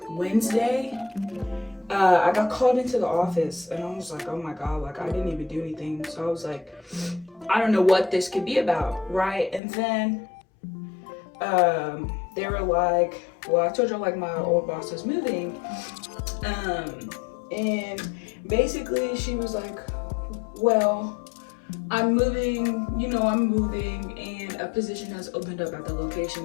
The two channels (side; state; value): right; drops out; at 9.6 s